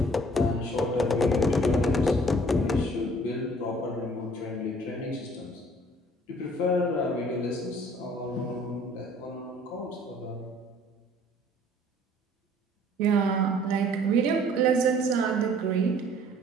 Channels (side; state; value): both; normal; correlation 0.55